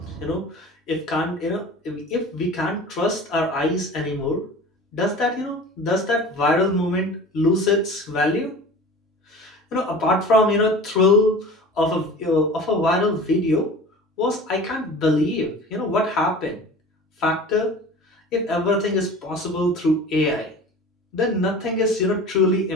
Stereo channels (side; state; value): both; normal; correlation 0.39